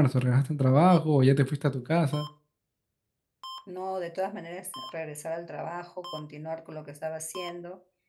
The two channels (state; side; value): identical; both; correlation 1.00